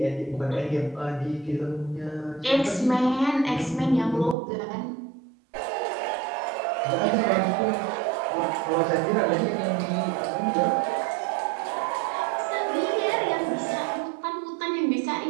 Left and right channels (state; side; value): drops out; left; at 4.4 s